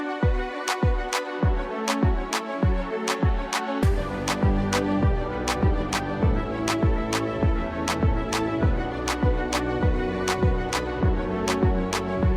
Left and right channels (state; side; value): identical; both; correlation 1.00